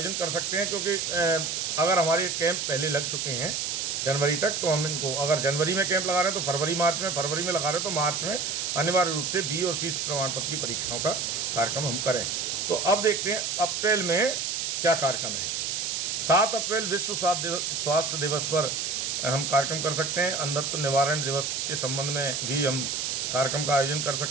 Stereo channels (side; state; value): right; noise; hiss, 1 dB below the sound